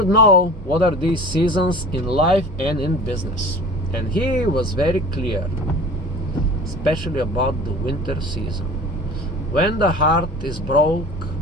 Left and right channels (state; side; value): normal; both; correlation 0.41